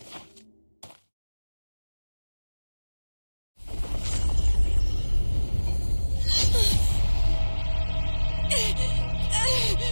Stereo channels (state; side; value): inverted; both; correlation -1.00